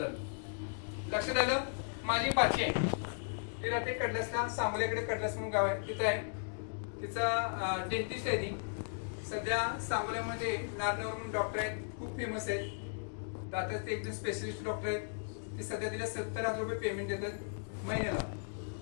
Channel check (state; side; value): silent; right; digital silence